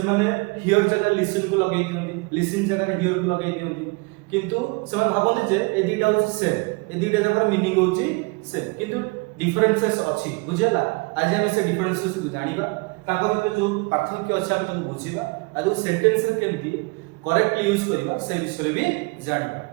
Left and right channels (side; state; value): left; quieter; 28.2 dB